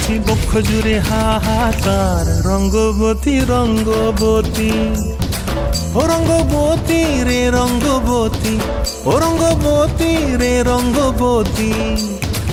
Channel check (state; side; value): identical; both; correlation 1.00